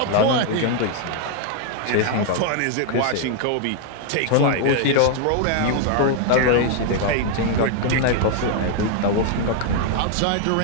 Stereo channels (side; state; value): both; different; correlation 0.00